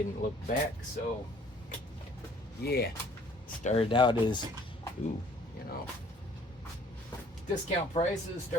look back. So yeah, started out as discount prices.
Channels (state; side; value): normal; both; correlation 0.56